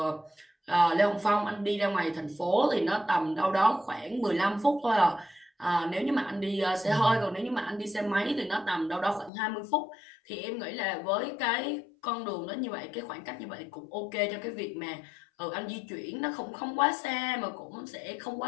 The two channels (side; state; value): right; drops out; at 9.3 s